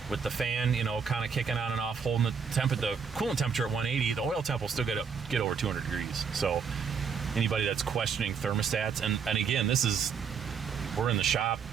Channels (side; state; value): left; quieter; 6.3 dB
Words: with the fan, kind of kicking on and off, holding the coolant temperature at 180, the oil temp will still get over 200 degrees. So anybody that's questioning thermostats, and again, we're in the shop